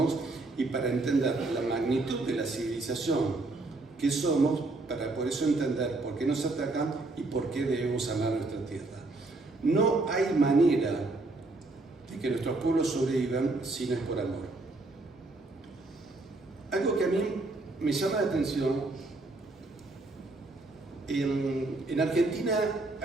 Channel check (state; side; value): quieter; left; 3.1 dB